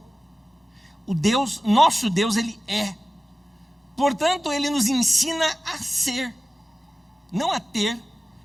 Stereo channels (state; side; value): normal; both; correlation 0.96